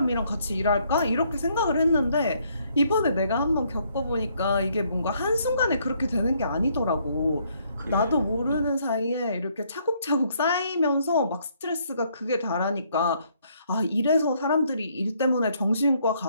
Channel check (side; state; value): both; inverted; correlation -0.69